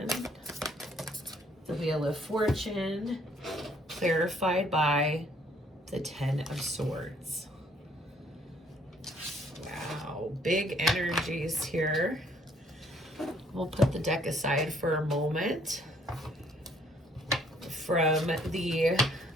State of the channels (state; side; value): normal; both; correlation 0.64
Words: the Wheel of Fortune, clarified by the 10 of Swords. Wow, big energies here. We'll put the deck aside for a moment. From the